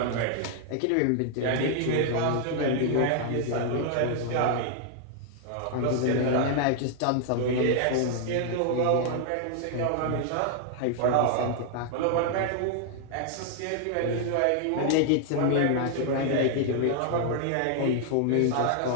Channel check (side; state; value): both; different; correlation 0.00